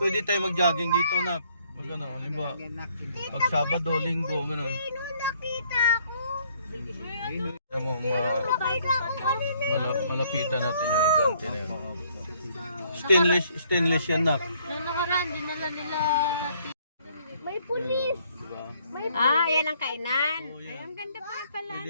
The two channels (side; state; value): both; inverted; correlation -0.65